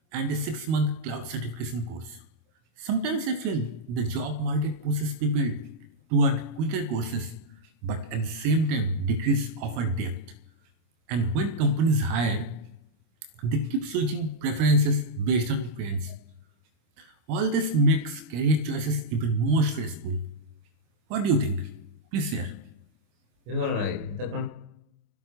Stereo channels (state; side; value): late; left; 26 ms